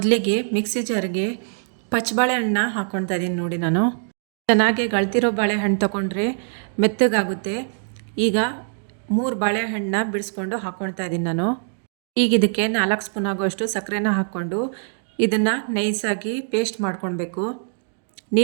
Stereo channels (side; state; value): left; silent; digital silence